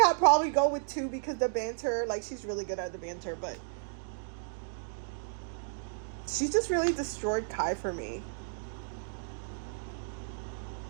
probably go with 2 because the banter, like, she's really good at the banter, but she just really destroyed Kai for me.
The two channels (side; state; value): left; silent; digital silence